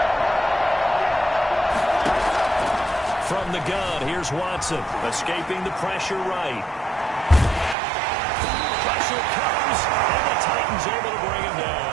From the gun, here's Watson, escaping the pressure right. Pressure comes, and the Titans able to bring him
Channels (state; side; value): drops out; left; at 7.8 s